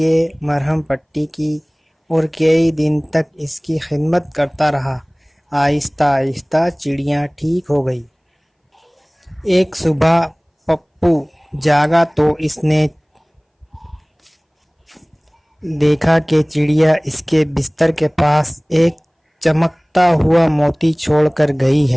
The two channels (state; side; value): identical; both; correlation 1.00